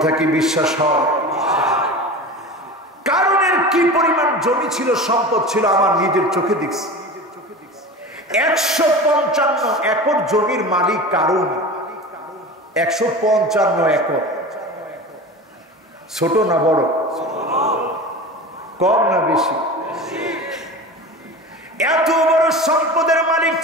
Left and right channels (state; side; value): normal; both; correlation 0.32